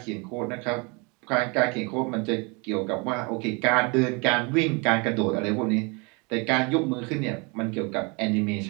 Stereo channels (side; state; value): left; quieter; 30.4 dB